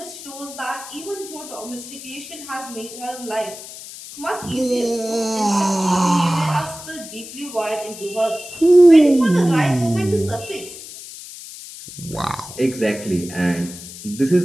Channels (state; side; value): noise; left; hiss, 14 dB below the sound